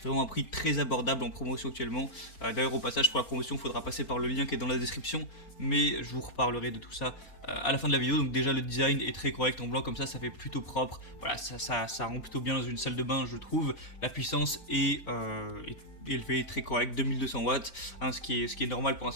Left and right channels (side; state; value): right; late; 4.6 ms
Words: vraiment un prix très abordable en promotion actuellement. D'ailleurs au passage pour la promotion il faudra passer par le lien qui est dans la description, mais je vous reparlerai de tout ça à la fin de la vidéo. Donc déjà le design est très correct en blanc comme ça fait plutôt propre. Voilà, ça rend plutôt bien dans une salle de bain je trouve. La puissance est élevée, très correct, 2200 watts, hein, ce qui est normal pour un